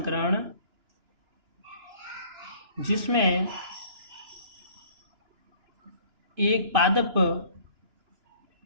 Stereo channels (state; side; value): late; left; 2.9 ms